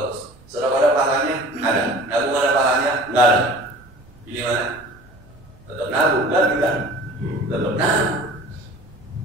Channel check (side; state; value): right; noise; rumble, 26 dB below the sound